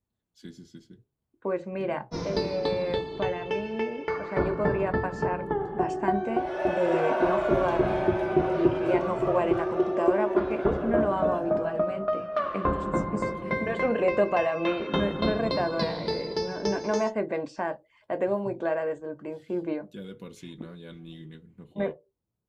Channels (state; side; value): identical; both; correlation 1.00